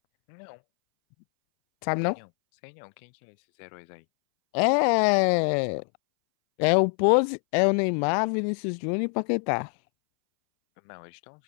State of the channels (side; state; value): right; silent; 62 dB below the other